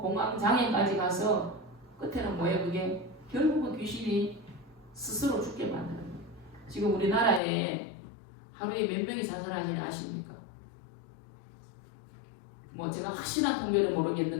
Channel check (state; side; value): drops out; right; at 7.4 s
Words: 공황장애까지 가서 끝에는 뭐예요? 그게 결국은 귀신이 스스로 죽게 만드는 거예요. 지금 우리나라에 하루에 몇 명이 자살하는지 아십니까? 뭐 제가 확실한 통계는